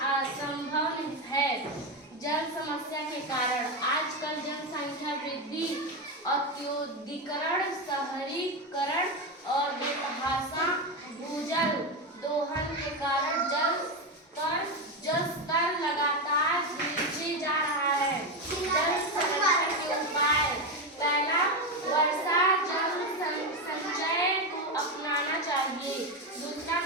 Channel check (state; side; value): normal; both; correlation 0.12